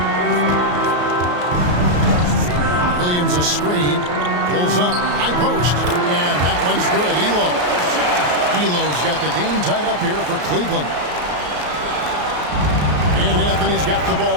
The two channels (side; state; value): left; late; 34 ms